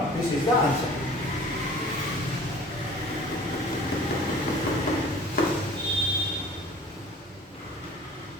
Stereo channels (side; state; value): both; normal; correlation 0.45